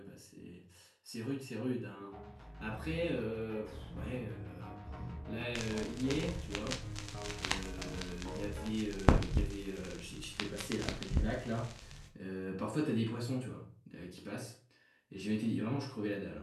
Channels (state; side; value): identical; both; correlation 1.00